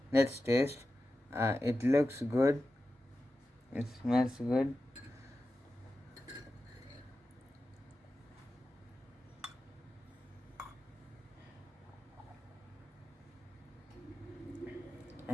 Let's taste. It looks good. It smells good.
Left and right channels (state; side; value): normal; both; correlation 0.92